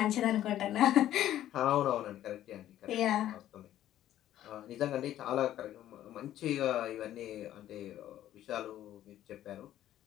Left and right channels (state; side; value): quieter; right; 12.5 dB